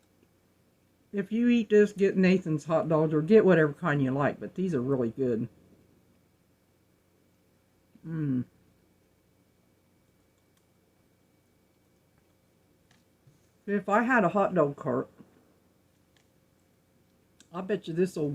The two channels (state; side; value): identical; both; correlation 1.00